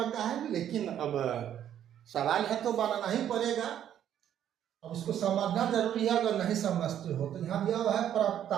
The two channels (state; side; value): quieter; left; 10.3 dB